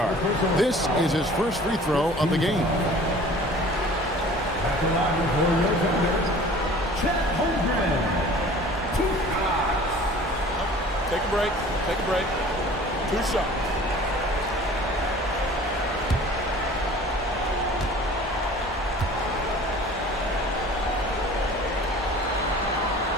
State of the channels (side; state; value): both; normal; correlation 0.46